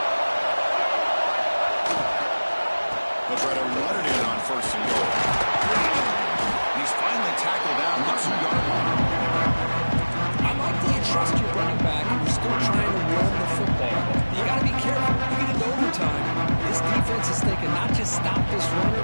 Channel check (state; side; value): inverted; both; correlation -1.00